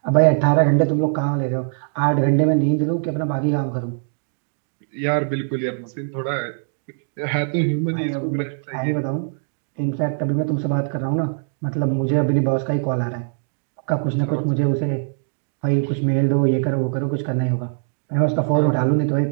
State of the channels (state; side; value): silent; left; digital silence